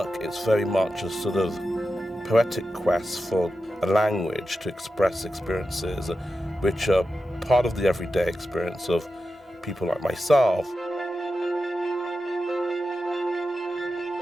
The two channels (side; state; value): both; normal; correlation 0.91